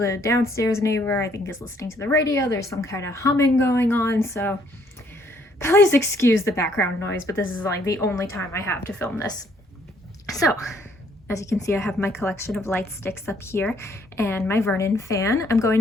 downstairs neighbor I think is listening to the radio, there's some kind of humming going on, so please excuse the background noise, but this is like the only time I have to film this. So, as you can see, I have my collection of light sticks up here and my Vernon fan. I'm going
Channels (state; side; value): normal; both; correlation 0.66